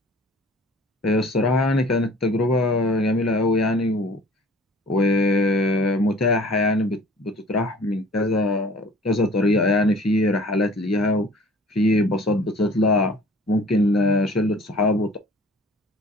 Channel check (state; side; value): normal; both; correlation 0.49